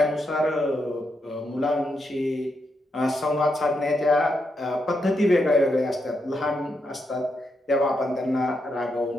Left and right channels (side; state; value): both; normal; correlation 0.82